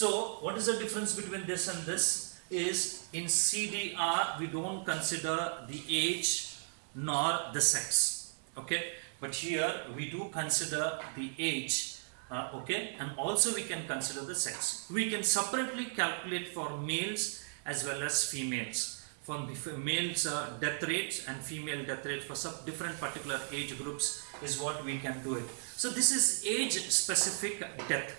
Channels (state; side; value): silent; left; 54 dB below the other